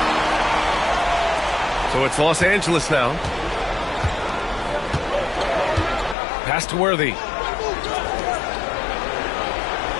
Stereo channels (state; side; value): drops out; right; at 6.2 s